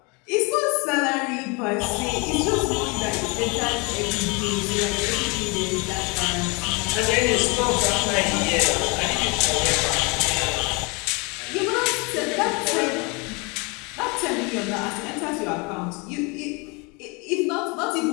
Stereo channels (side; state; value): right; quieter; 29.3 dB